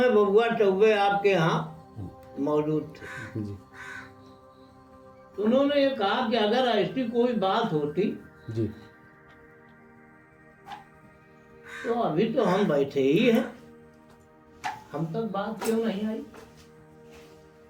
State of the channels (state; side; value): identical; both; correlation 1.00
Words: बबुआ चौबे आपके यहाँ मौजूद थे जी तो उन्होंने ये कहा कि अगर ऐसी कोई बात होती जी तो अभी तो हम बैठे ही हैं, हम तक बात क्यों नहीं आई।